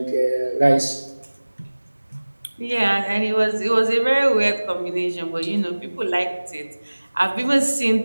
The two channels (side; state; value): both; inverted; correlation -1.00